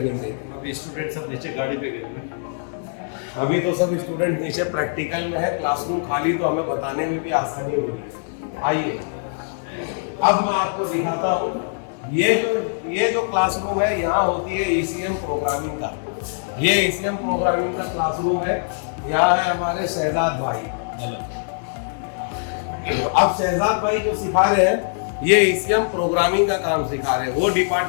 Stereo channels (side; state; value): right; silent; digital silence